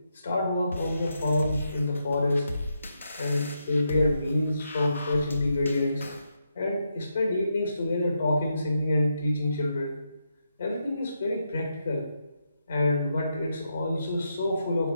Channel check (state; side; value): inverted; both; correlation -0.83